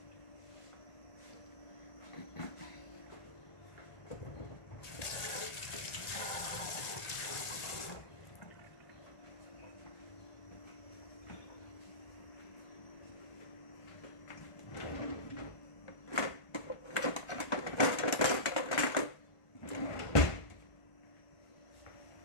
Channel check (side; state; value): right; late; 1.5 ms